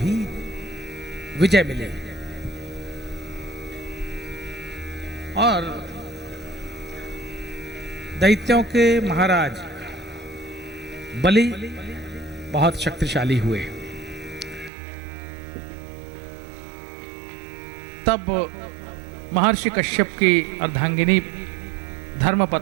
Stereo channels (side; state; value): left; drops out; at 14.7 s